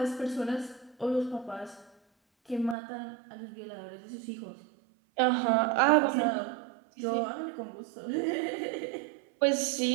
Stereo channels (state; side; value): drops out; left; at 2.8 s